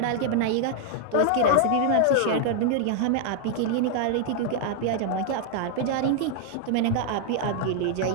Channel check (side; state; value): both; different; correlation 0.00